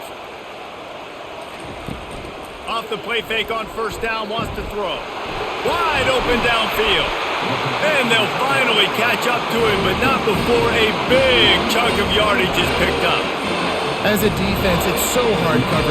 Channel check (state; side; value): identical; both; correlation 1.00